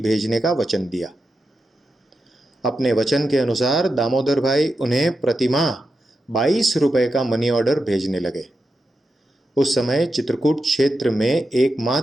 का वचन दिया। अपने वचन के अनुसार दामोदर भाई उन्हें प्रतिमाह 22 रुपए का मनी ऑर्डर भेजने लगे। उस समय चित्रकूट क्षेत्र में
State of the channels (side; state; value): both; normal; correlation 0.88